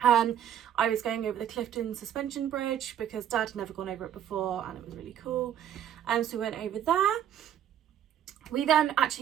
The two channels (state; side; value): quieter; left; 10.1 dB